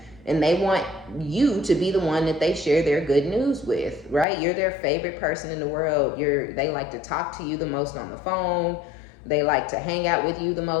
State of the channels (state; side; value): drops out; right; at 4.2 s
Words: And they want you to be the one that they share their good news with, right? You're their favorite person in the world. They like to talk to you the most on the phone. They like to hang out with you the